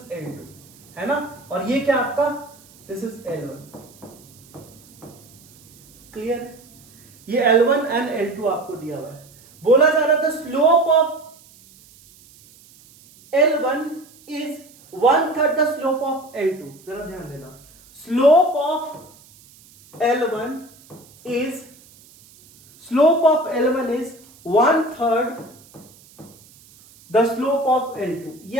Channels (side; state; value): right; noise; hiss, 26 dB below the sound